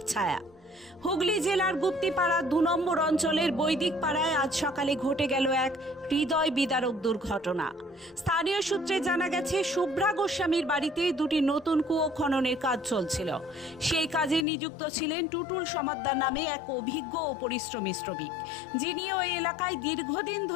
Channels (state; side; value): drops out; right; at 14.5 s